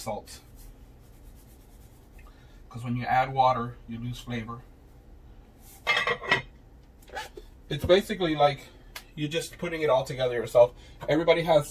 salt, because when you add water, you lose flavor. It's basically like you're just putting it all together yourself. Everybody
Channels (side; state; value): both; identical; correlation 1.00